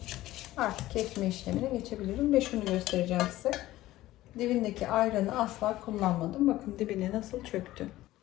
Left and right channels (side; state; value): right; quieter; 16.0 dB